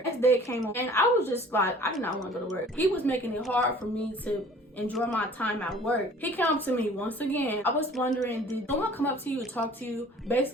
Next day came on and I was just like, I did not want to go to work. He was making it hard for me to enjoy my time at work. He came up to me once again. I was wondering, did someone come up to you and talk to you?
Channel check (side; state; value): both; normal; correlation 0.49